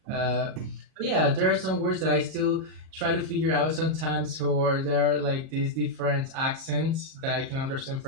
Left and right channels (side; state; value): left; late; 37 ms